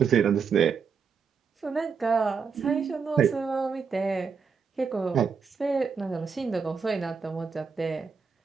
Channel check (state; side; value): quieter; left; 5.8 dB